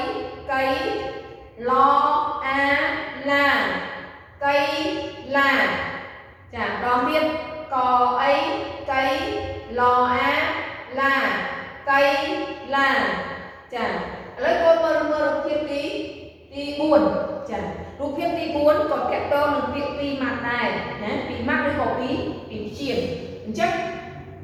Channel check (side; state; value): both; identical; correlation 1.00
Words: កៃឡឡាកៃឡាចាដងទៀតកអីកៃឡឡាកៃឡាចាឥឡូវកូនមើលរូបភាពទី4ចារូបភាពទី4ក៏តាក់ទងនឹងពាក្យពីរម៉ាត់ដែរណាពីរម៉ាត់ឬក៏ពីជាងអញ្ចឹង